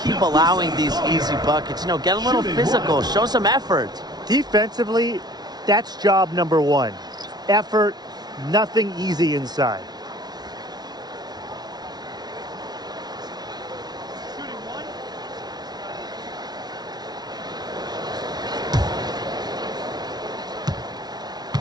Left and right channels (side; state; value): left; late; 0.19 ms